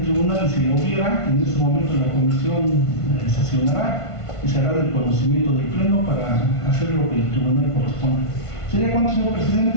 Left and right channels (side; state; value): right; late; 1.5 ms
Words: tribunal, si la hubiera, en este momento la comisión sesionará y se hará del conocimiento del pleno para hacer lo que el tribunal corresponde. ¿Sería cuánto, señor